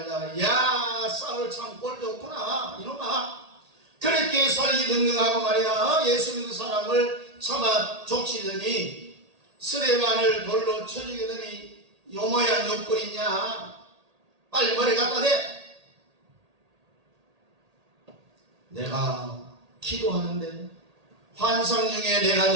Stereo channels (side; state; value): left; late; 1.8 ms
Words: 야 사울 참 꼴 좋구나 이놈아. 그렇게 살기 등등하고 말이야 예수 믿는 사람을 참아 족치더니 스데반을 돌로 쳐 죽이더니 요 모양 욕거리냐. 빨리 머리 갖다 대. 내가 기도하는데 환상 중에 내가